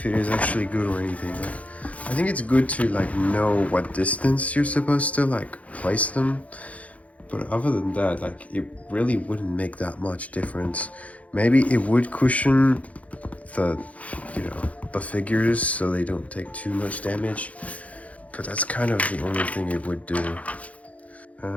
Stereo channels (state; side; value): late; right; 0.067 ms